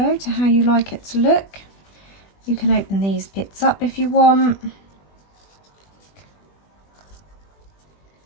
to how you like it to look. You can open these bits up if you want.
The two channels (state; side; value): late; right; 20 ms